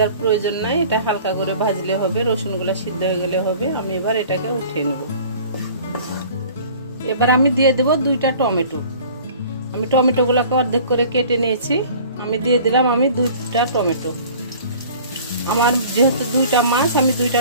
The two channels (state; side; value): inverted; both; correlation -0.47